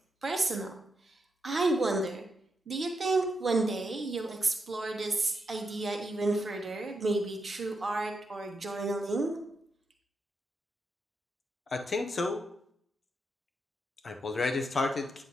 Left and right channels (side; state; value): both; normal; correlation 0.83